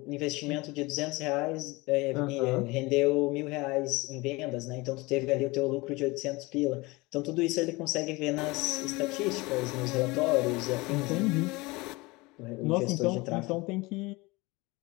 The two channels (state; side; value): quieter; right; 23.2 dB